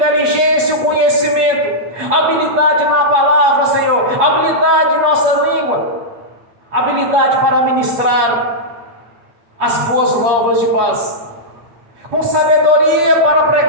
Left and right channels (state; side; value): late; left; 8.4 ms